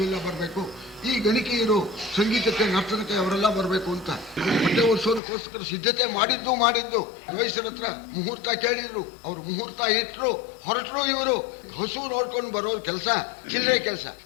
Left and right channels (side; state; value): right; drops out; at 5.2 s